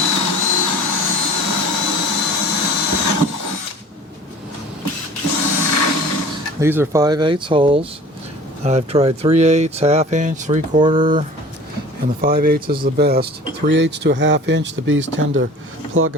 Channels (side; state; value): both; normal; correlation 0.44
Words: These are 5/8 holes. I've tried 3/8, ½ inch, 3/4, and the 5/8 is the best. 3/8 to a ½ inch, the bees tend to plug